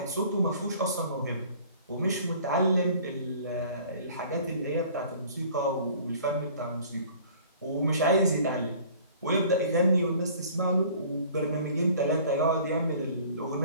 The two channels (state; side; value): inverted; both; correlation -0.50